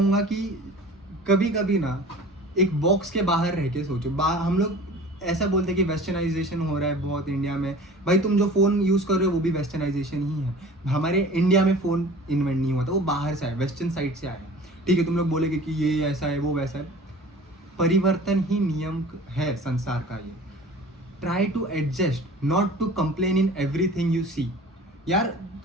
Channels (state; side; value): normal; both; correlation 0.43